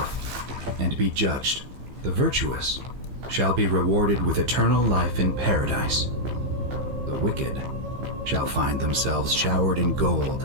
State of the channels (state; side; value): late; left; 15 ms